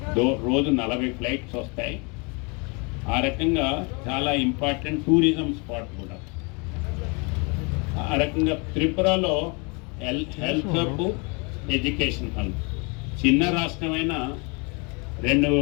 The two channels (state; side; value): quieter; right; 31.5 dB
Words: రోజు 40 ఫ్లైట్స్ వస్తాయి. ఆ రకంగా చాలా ఇంపార్టెంట్ టూరిజం స్పాట్ కూడా. ఆ రకంగా త్రిపురలో హెల్త్ హబ్, ఎడ్యుకేషన్ హబ్. చిన్న రాష్ట్రమైన